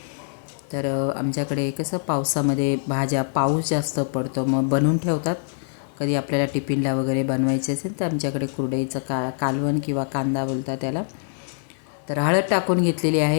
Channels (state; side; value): silent; right; digital silence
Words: तर आमच्याकडे कसं पावसामध्ये भाज्या, पाऊस जास्त पडतो मग बनवून ठेवतात। कधी आपल्याला टिफिनला वगैरे बनवायचे असेल तर आमच्याकडे कुरडईचं कालवण किंवा कांदा बोलतात त्याला। तर हळद टाकून घेतलेली